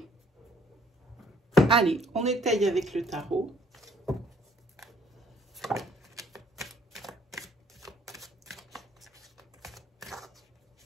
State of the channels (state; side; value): normal; both; correlation 0.60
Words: Allez, on étaye avec le tarot.